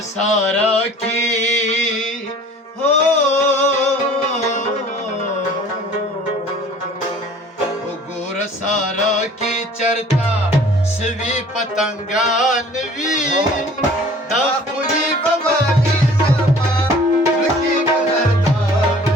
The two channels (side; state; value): both; normal; correlation 0.49